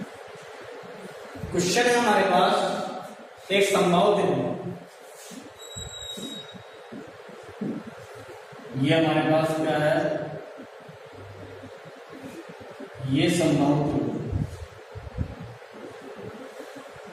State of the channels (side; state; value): both; identical; correlation 1.00